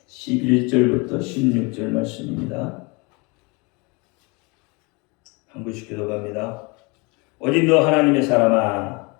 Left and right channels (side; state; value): right; quieter; 28.5 dB